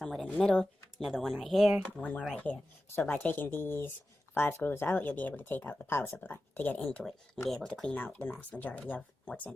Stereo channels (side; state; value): both; normal; correlation 0.93